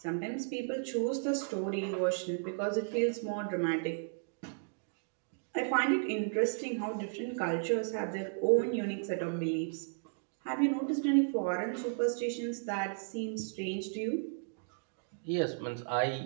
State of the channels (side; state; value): left; silent; digital silence